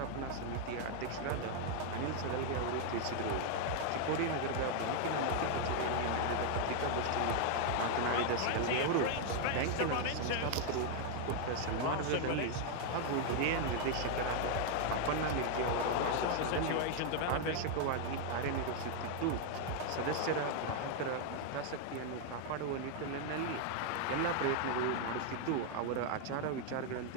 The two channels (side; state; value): both; different; correlation 0.00